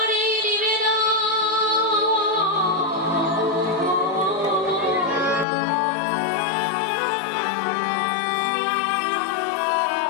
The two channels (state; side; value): drops out; right; at 5.5 s